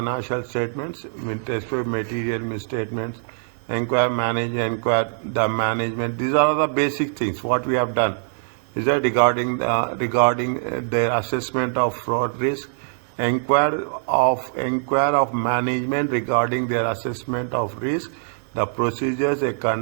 statements, with respect to material misstatements, inquire the management. These are the basic things what we have done. Is that regarding their assessment of fraud risk, inquire of management regarding their assessment of risk, the procedures they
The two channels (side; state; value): left; silent; digital silence